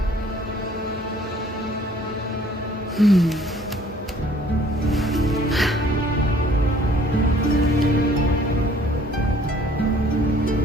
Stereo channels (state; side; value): normal; both; correlation 0.57